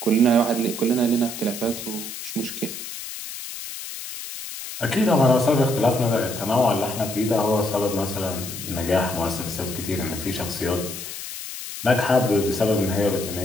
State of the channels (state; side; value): noise; left; hiss, 9 dB below the sound